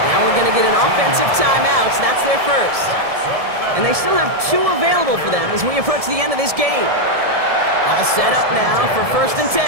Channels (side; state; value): left; late; 1.7 ms